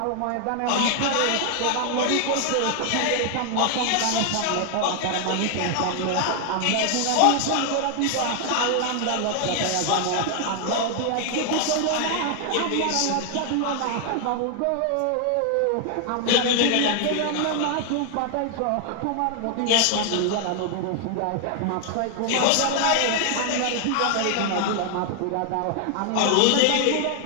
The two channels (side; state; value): both; different; correlation 0.00